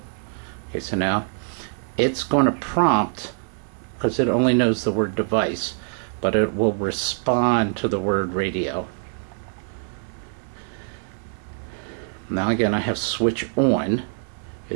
Okay, so now it's going to prompt, because it only knows the word device, but it will respond to the word radio. Now again, I have switch on.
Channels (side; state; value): left; silent; 62 dB below the other